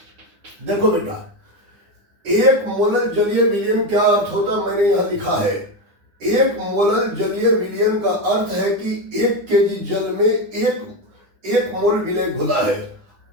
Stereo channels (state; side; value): late; left; 9.8 ms